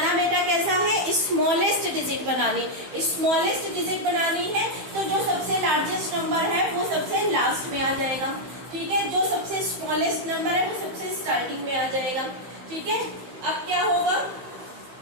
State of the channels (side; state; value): left; late; 15 ms